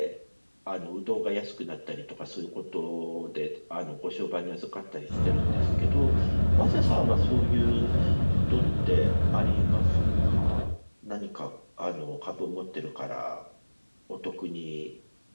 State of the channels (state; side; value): inverted; both; correlation -1.00